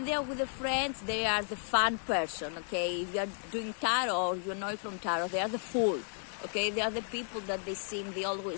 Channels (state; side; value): silent; right; 55 dB below the other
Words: they are with their friends, they are the fun person, okay? If you are doing tarot or you know from tarot, they are the fool, okay? They are the people that they